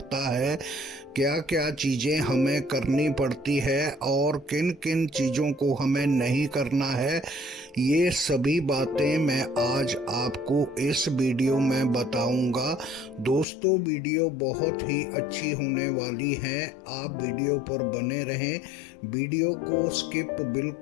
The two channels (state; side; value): drops out; right; at 13.5 s